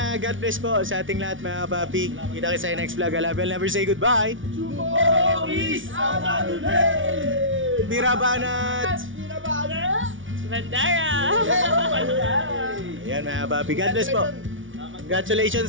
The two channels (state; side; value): late; left; 0.56 ms